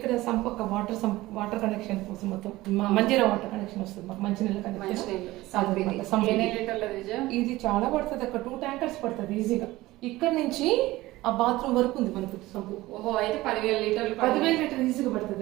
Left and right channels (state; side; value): quieter; left; 18.2 dB